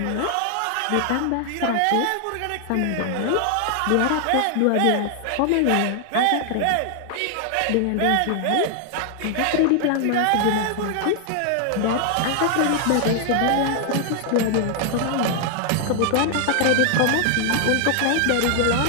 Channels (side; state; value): both; different; correlation 0.00